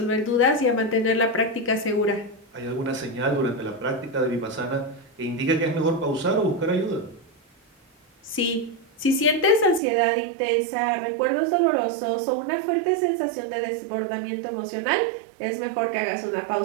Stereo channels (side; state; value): left; drops out; at 9.8 s